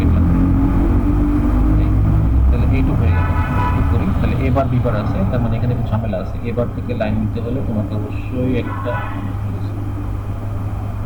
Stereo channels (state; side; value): identical; both; correlation 1.00